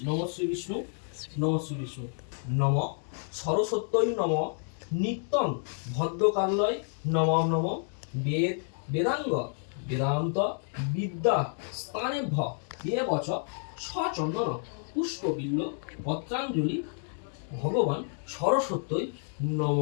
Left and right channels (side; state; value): right; silent; 57 dB below the other